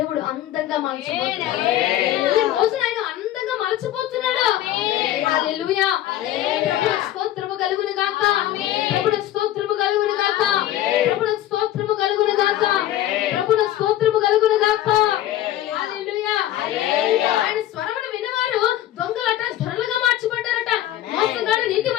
అందంగా మార్చబోతున్నాడు. ఈ రోజున ఆయన అందంగా మార్చబోతున్నాడు. హల్లెలూయా. ప్రభువుకు స్తోత్రము కలుగును గాక. ప్రభువుకు స్తోత్రము కలుగును గాక. ప్రభువుకు స్తోత్రము కలుగును గాక. ప్రభువుకు స్తోత్రము కలుగును గాక. హల్లెలూయా. ఆయన స్వరమును విన్నవారు దొంగలట ధరలుగా మార్చబడ్డారట. మోసగాడు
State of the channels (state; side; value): quieter; right; 13.2 dB